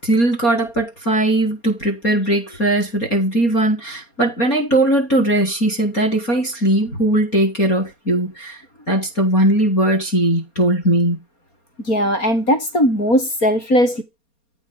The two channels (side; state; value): right; late; 4.3 ms